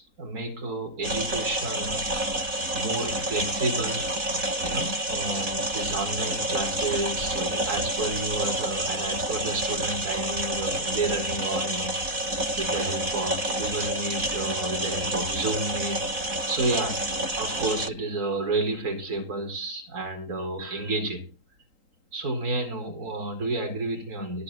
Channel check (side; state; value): left; late; 4.1 ms